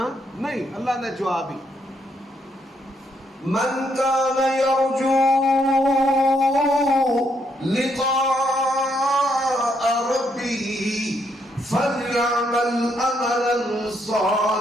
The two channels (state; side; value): normal; both; correlation 0.75